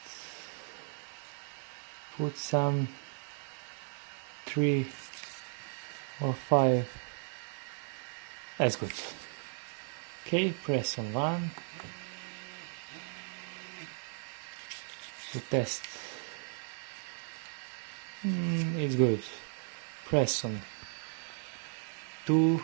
put some 3 or 5. That's good. Okay, press on 1 to test. It's good. Press on 2.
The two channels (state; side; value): silent; left; 54 dB below the other